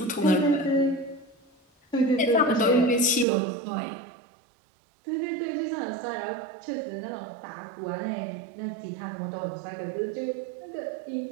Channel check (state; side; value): drops out; left; at 3.2 s